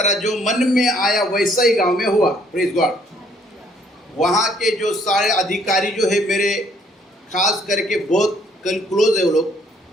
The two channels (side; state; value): both; normal; correlation 0.64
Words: जो मन में आया वैसा ही गांव में हुआ। Praise God. वहाँ के जो सारे अधिकारी जो है मेरे, खास करके बहुत क्लोज है वो लोग,